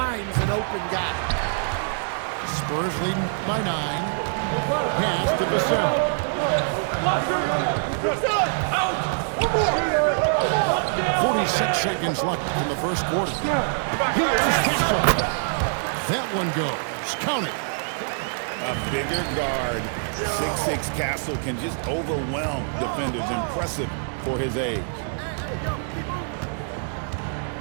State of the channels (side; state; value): left; silent; 60 dB below the other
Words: an open guy. Spurs leading by 9. Pass to Vassell. 46 seconds left in the first quarter. Here's Castle. That one goes. Count it. A bigger guard, 6'6" Castle can just overwhelm defenders. Impressive for his age.